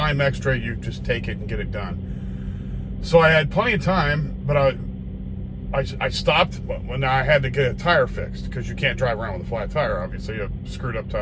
extra, you just take it and get it done. So I had plenty of time, but I stopped when I had to get a tire fixed, because you can't drive around with a flat tire, obviously. You have a screwed up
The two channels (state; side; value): identical; both; correlation 1.00